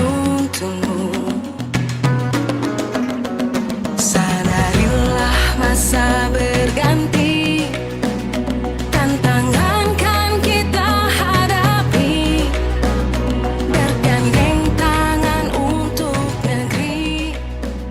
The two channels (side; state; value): both; identical; correlation 1.00